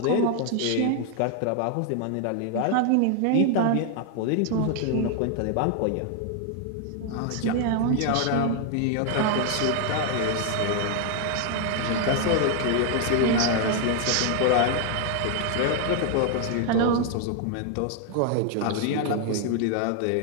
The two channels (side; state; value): both; different; correlation 0.00